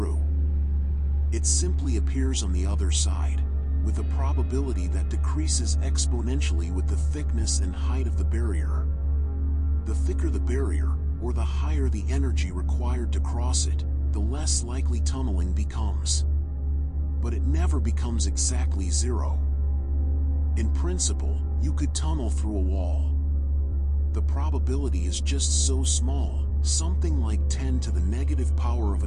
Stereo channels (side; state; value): both; identical; correlation 1.00